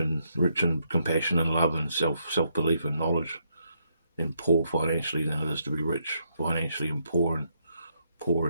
compassion and love and self belief and knowledge, and poor financially than it is to be rich financially and poor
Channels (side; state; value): both; inverted; correlation -0.76